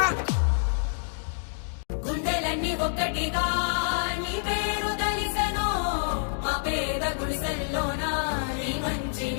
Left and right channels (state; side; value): silent; right; digital silence